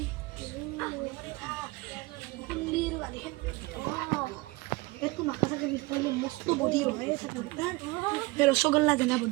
কুল্লির গালি একটু নাকা থাকে নিশ্চয় মস্ত বডি হয় সকালটা রসগোল্লা দেনা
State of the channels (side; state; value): left; quieter; 23.6 dB